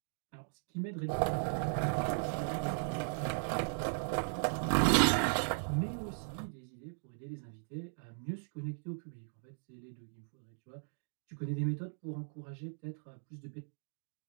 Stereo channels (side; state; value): left; silent; digital silence